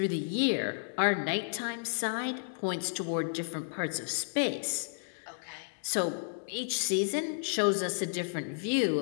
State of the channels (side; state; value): right; silent; digital silence